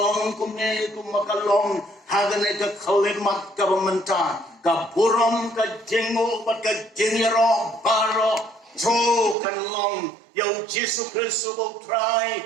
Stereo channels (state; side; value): drops out; left; at 9.3 s